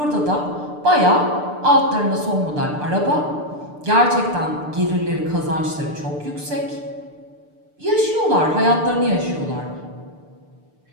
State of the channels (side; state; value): left; late; 6.7 ms